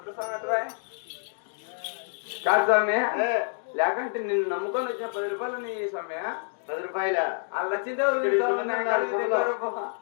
స్వామి అటువా కాదు స్వామి లేకంటే నిన్ను నమ్ముకొని వచ్చిన 10 రూపాయలు నీ స్వామి 10 రూపాయల లచ్చిందే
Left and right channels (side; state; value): right; silent; digital silence